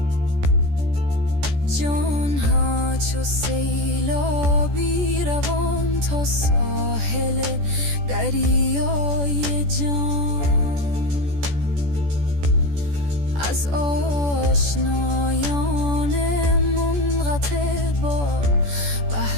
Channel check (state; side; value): late; left; 14 ms